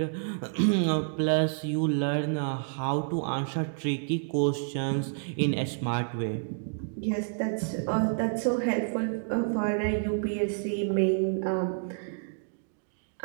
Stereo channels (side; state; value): left; silent; digital silence